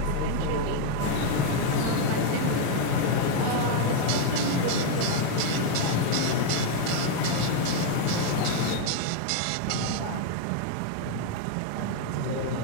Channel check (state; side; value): different; both; correlation 0.01